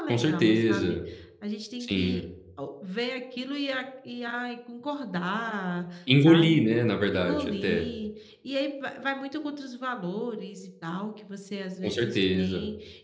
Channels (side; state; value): both; identical; correlation 1.00